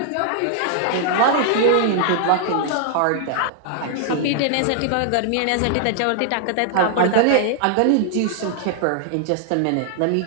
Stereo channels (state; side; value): different; both; correlation -0.01